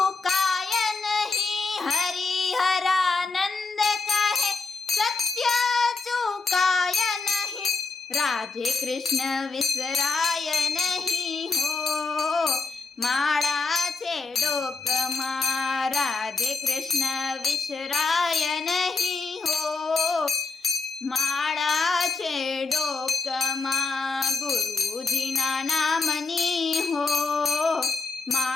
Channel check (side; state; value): right; quieter; 4.2 dB